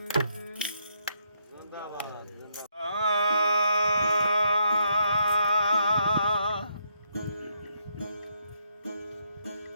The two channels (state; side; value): inverted; both; correlation -0.75